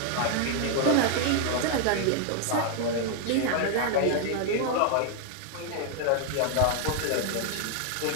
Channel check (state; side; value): different; both; correlation 0.00